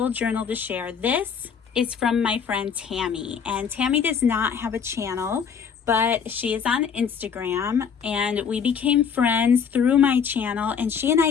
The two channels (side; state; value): right; quieter; 6.8 dB